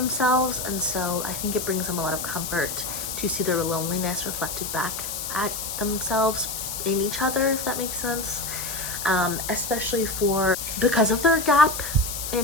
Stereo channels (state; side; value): noise; left; hiss, 5 dB below the sound